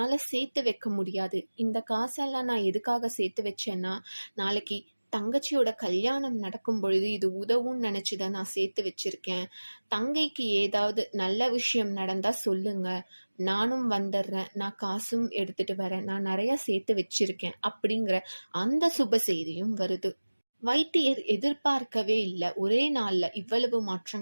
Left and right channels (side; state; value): both; inverted; correlation -1.00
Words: சேர்த்து வைக்க முடியாது. இந்த காசெல்லாம் நான் எதுக்காக சேர்த்து வச்சேன்னா, நாளைக்கு தங்கச்சியோட கல்யாணம் நடக்கும் பொழுது இது உதவும்னு நினைச்சு தான் நான் சேர்த்து வச்சிருக்கேன். தங்கைக்கு ஏதாவது நல்ல விஷயம் நடந்தா சொல்லுங்க. நானும் வந்துடுறேன். நான் காசும் எடுத்துட்டு வரேன். நான் நிறைய சேர்த்து வச்சிருக்கேன்" அப்படிங்கிற அந்த சுப செய்தியும் வருது. வைத்தியர் எதிர்பார்க்கவே இல்ல. ஒரே நாள்ல இவ்வளவு